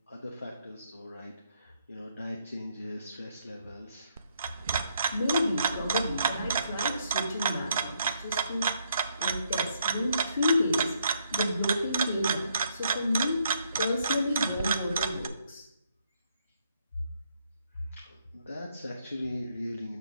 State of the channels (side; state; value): both; inverted; correlation -0.73